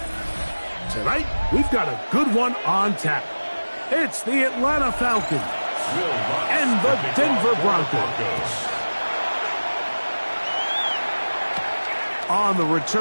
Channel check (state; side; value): inverted; both; correlation -1.00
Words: Tonight, we've got a good one on tap. It's the Atlanta Falcons and the Denver Broncos. On the